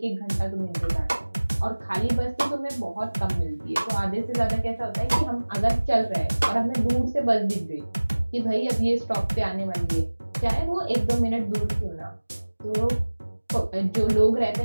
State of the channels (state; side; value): inverted; both; correlation -1.00